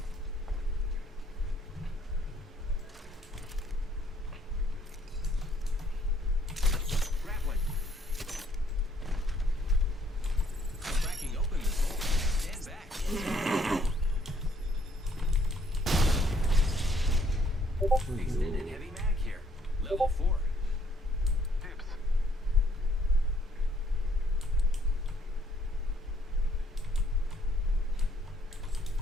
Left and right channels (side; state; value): both; normal; correlation 0.66